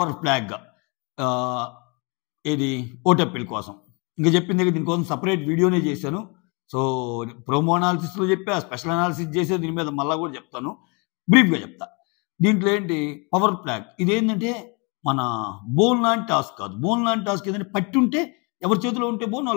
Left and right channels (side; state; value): right; quieter; 31.7 dB